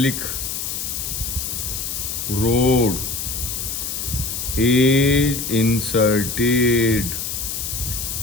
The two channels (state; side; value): noise; left; hiss, 4 dB below the sound